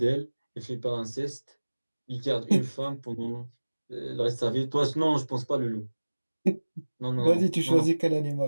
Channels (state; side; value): inverted; both; correlation -1.00